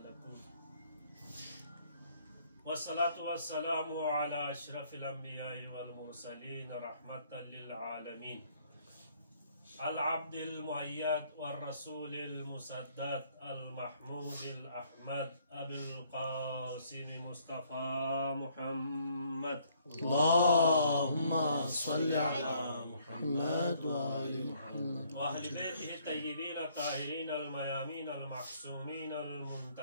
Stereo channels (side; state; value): both; inverted; correlation -0.65